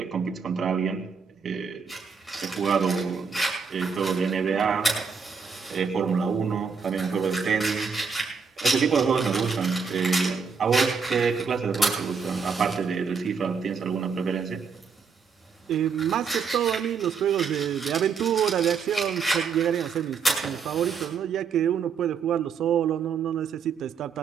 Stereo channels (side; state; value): left; quieter; 5.7 dB